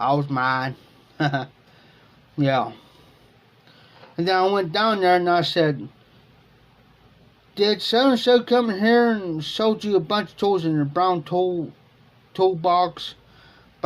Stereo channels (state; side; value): identical; both; correlation 1.00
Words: was mad. Yeah. And then I went down there and I said, did so-and-so come in here and sold you a bunch of tools in a brown toolbox